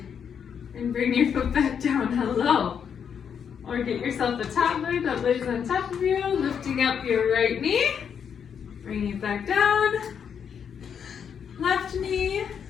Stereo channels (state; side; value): quieter; right; 7.5 dB